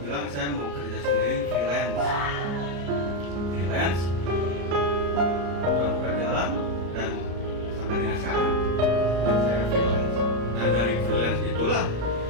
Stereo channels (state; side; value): late; left; 34 ms